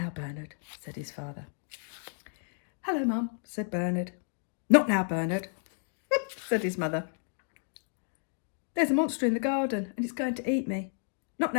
Bernard, said his father. Hello, Mum, said Bernard. Not now, Bernard, said his mother. There's a monster in the garden and it's going to eat me. Not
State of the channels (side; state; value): right; silent; 55 dB below the other